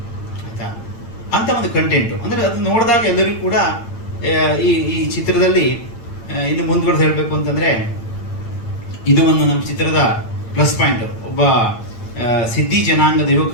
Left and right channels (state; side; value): late; right; 8.9 ms